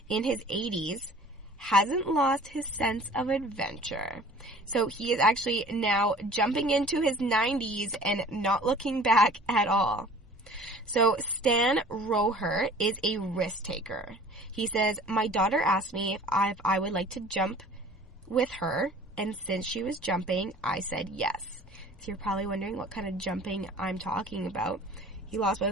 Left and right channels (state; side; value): normal; both; correlation 0.47